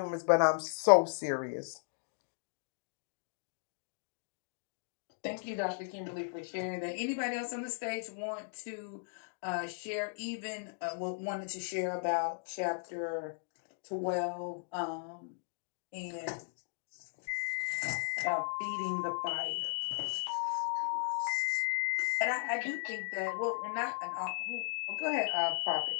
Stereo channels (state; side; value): silent; right; digital silence